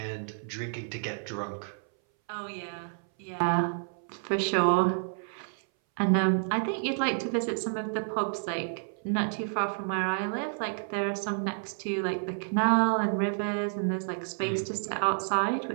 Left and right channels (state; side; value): silent; left; 58 dB below the other